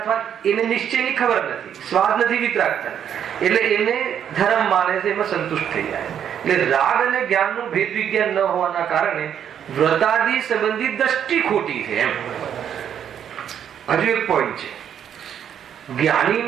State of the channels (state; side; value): quieter; left; 9.0 dB